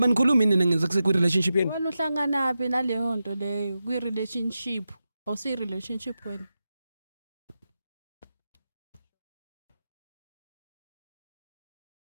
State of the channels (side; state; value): both; inverted; correlation -0.91